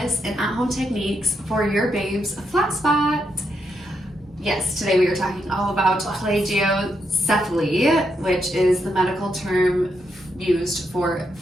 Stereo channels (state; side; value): normal; both; correlation 0.81